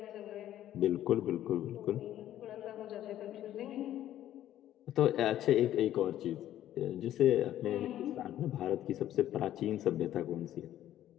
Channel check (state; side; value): quieter; right; 12.3 dB